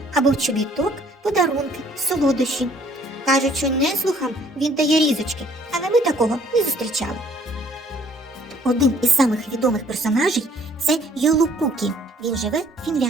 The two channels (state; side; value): normal; both; correlation 0.60